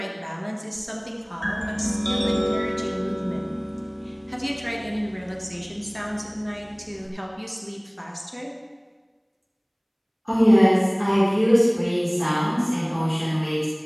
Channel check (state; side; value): identical; both; correlation 1.00